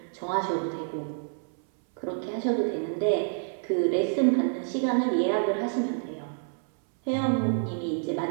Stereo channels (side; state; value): left; silent; 59 dB below the other